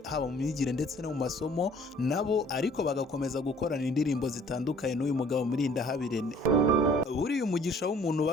haba mu myigire ndetse no mu masomo nabo, ariko bagakomeza gukorana indirimbo zitandukanye n'uyu mugabo Murindahabirene. Buriya umugisha w'umuntu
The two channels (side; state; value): both; normal; correlation 0.55